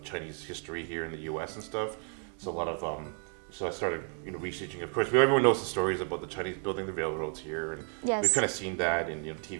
Chinese history here in the US and stuff. So a lot of, so I started, researching. Of course, everyone knows the stories about the Chinese building the railroads here, and we've kind of seen that in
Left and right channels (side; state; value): left; quieter; 37.7 dB